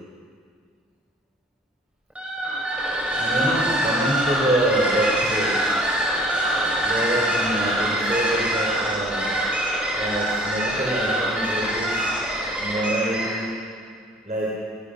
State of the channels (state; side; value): normal; both; correlation 0.52